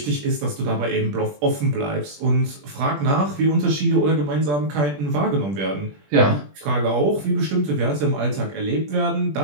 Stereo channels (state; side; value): late; left; 21 ms